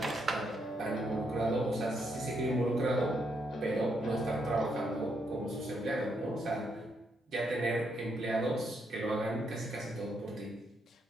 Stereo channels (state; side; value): normal; both; correlation 0.77